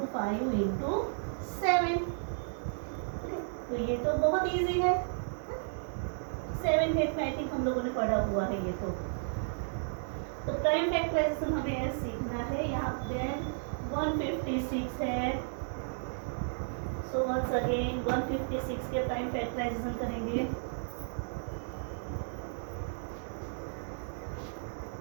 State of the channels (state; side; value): silent; left; digital silence